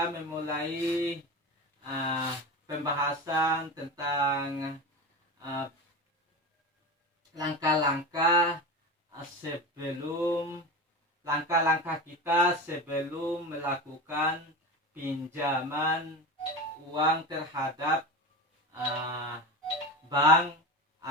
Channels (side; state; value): both; normal; correlation 0.26